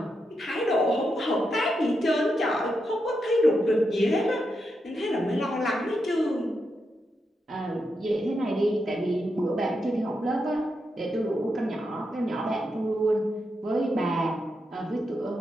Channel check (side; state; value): both; normal; correlation 0.85